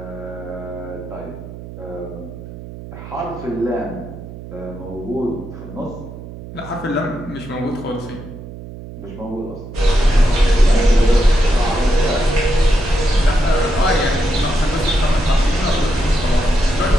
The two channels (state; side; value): noise; right; hum, 13 dB below the sound